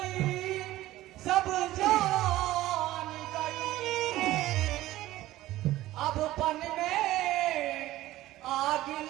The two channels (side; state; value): left; quieter; 15.9 dB